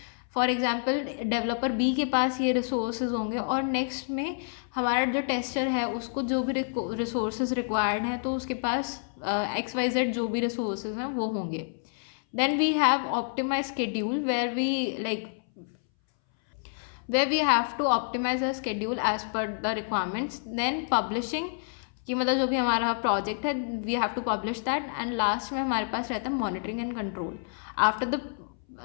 फॉर एग्जांपल डेवलपर बी के पास ये रिसोर्सेज होंगे, और नेक्स्ट में हमारा जो टेस्टर है उसको जो भी रिसोर्सेज रिक्वायर्ड हैं तो उसके पास XYZ जो भी रिसोर्सेज हैं वो होंगे. Then we have optimized schedule where we have to optimize our schedule as per the requirements. Then publishing कि मतलब जो भी हमारा प्रोजेक्ट है we have to publish that. And last में हमारे पास रहता है monitoring and control. After the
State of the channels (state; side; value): silent; right; 59 dB below the other